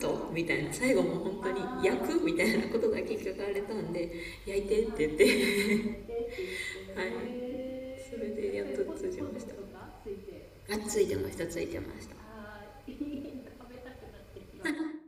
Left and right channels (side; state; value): both; identical; correlation 1.00